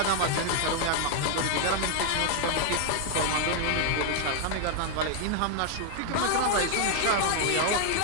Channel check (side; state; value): both; different; correlation 0.00